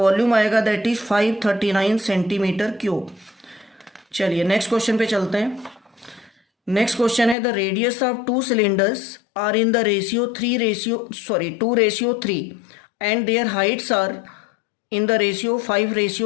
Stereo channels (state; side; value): drops out; right; at 7.4 s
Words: आएगा दैट इज 539 सेंटीमीटर क्यूब। चलिए नेक्स्ट क्वेश्चन पे चलते हैं। नेक्स्ट क्वेश्चन है the radius of 2 cylinders are in the ratio 2:3 and their heights are in the ratio